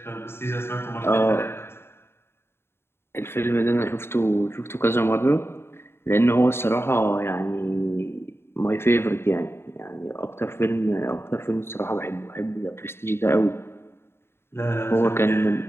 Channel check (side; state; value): right; late; 0.12 ms